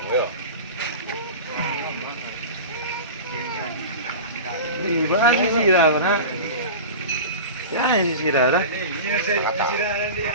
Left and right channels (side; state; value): both; inverted; correlation -0.31